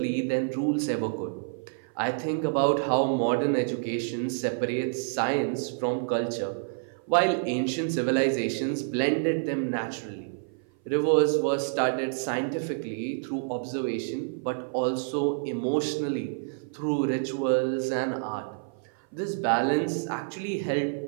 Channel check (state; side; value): silent; left; 56 dB below the other